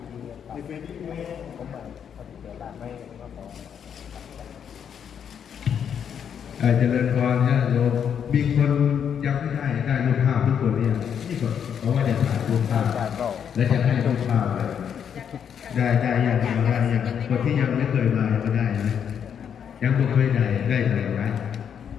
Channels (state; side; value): quieter; right; 8.1 dB